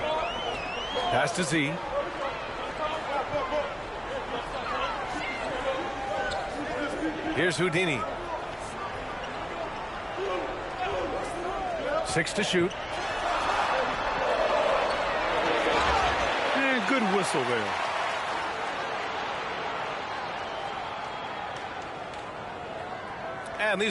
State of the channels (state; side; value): identical; both; correlation 1.00